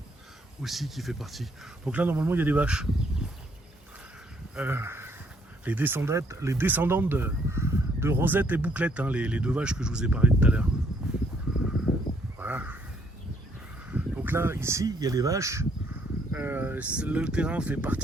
aussi qui fait partie. Donc là, normalement, il y a des vaches. Les descendantes de Rosette et Bouclette, hein, les deux vaches que je vous ai parlé tout à l'heure. Voilà. Donc là, ici, il y a les vaches. Le terrain fait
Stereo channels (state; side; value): normal; both; correlation 0.68